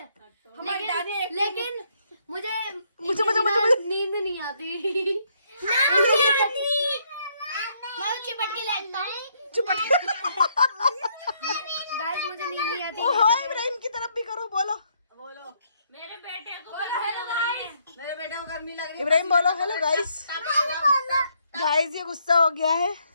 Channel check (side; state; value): both; inverted; correlation -0.71